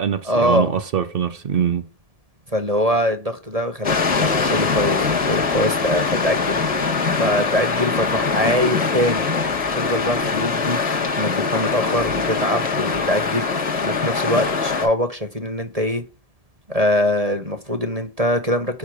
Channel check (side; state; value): left; late; 1.7 ms